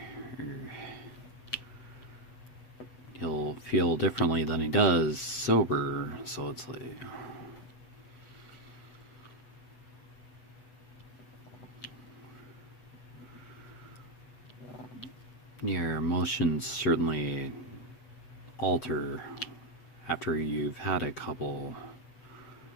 or he'll feel differently than he does sober. So it's like, your emotions certainly alter after you've had a couple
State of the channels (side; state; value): right; late; 8.0 ms